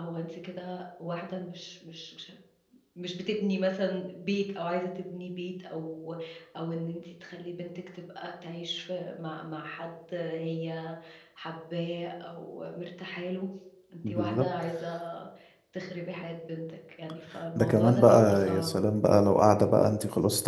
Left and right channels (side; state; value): both; identical; correlation 1.00